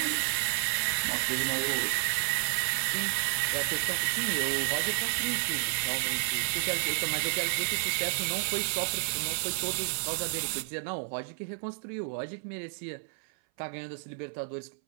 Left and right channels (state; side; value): silent; left; 57 dB below the other